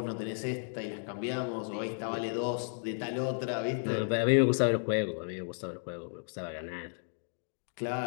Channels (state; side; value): silent; right; digital silence